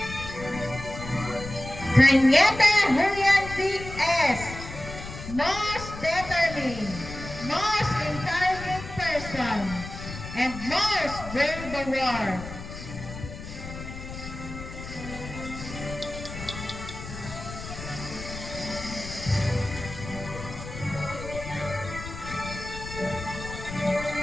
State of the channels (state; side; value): noise; left; rumble, 10 dB below the sound